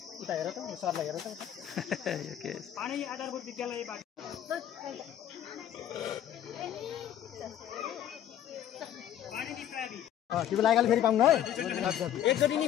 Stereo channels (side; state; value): right; quieter; 10.9 dB